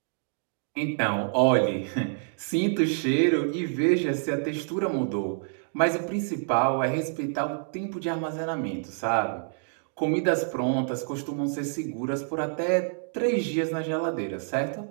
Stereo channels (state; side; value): silent; left; digital silence